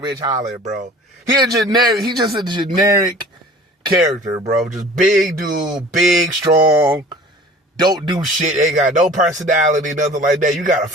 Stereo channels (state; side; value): normal; both; correlation 0.45